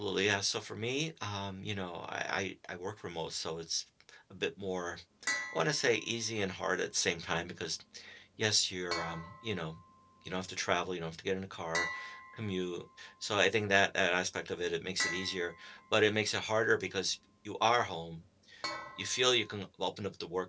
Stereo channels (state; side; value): identical; both; correlation 1.00